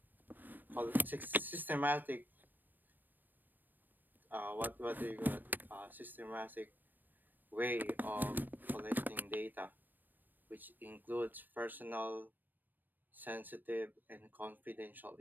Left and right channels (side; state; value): left; late; 0.090 ms